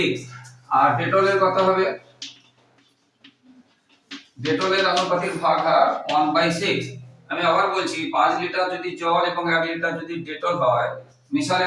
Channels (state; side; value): identical; both; correlation 1.00